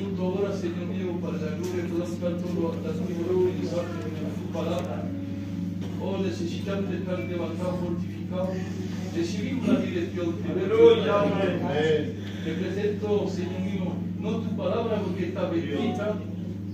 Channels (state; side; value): identical; both; correlation 1.00